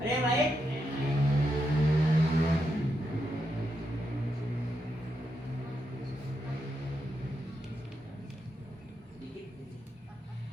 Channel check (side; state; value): both; normal; correlation 0.83